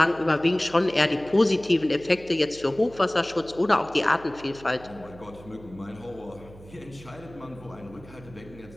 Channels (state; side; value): noise; right; hum, 20 dB below the sound